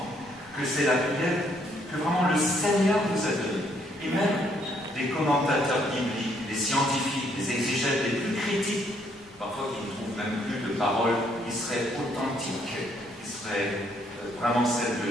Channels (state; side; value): normal; both; correlation 0.69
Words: que c'est la prière que vraiment le Seigneur nous a donnée. Et même des commentateurs bibliques, des scientifiques, des exégètes les plus critiques, parfois qui ne trouvent même plus de paroles qui seraient authentiques, qui seraient vraiment celles